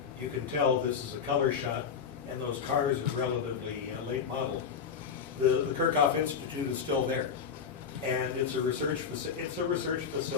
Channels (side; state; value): right; quieter; 6.6 dB